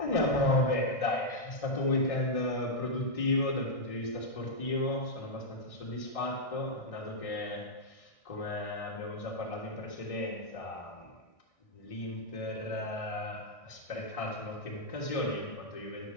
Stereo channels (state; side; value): late; right; 1.6 ms